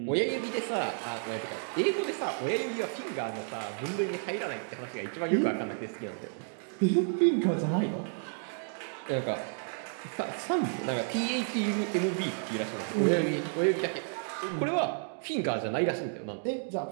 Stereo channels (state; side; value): silent; left; 57 dB below the other